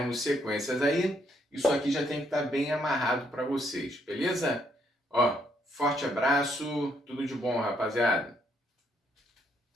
sequências aí, isso aqui já tem que estar bem amarrado para vocês, beleza? Ó, forte abraço, tudo de bom, rapaziada.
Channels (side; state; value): both; normal; correlation 0.72